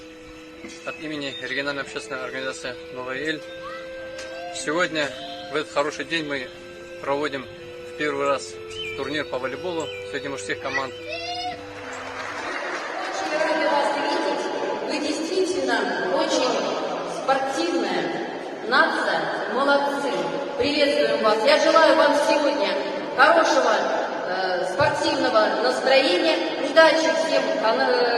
от имени региональной общественной организации «Новая Эль». Сегодня, в этот хороший день, мы проводим в первый раз турнир по волейболу среди мужских команд. Рады вас видеть. Вы действительно очень спортивная нация. Молодцы. Приветствуем вас. Я желаю вам сегодня хорошего спортивного настроения, удачи всем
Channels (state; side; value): identical; both; correlation 1.00